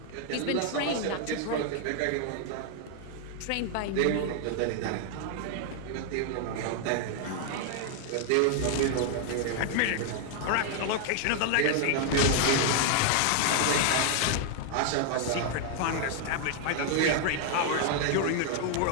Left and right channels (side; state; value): both; different; correlation 0.00